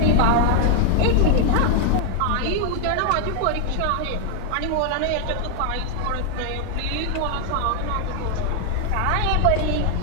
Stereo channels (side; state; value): both; different; correlation 0.00